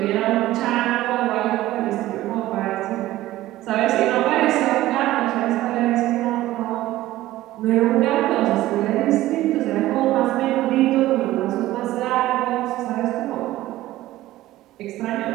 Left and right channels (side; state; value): left; quieter; 15.8 dB